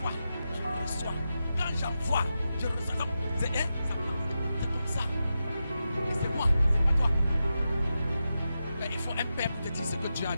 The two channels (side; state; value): both; inverted; correlation -0.90